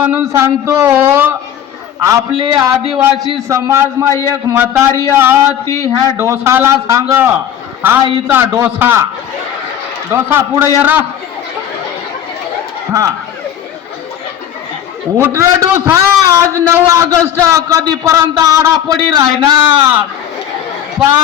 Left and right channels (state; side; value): quieter; right; 10.1 dB